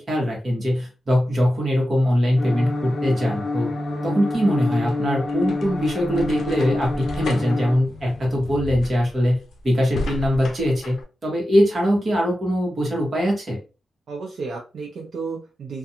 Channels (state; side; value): normal; both; correlation 0.92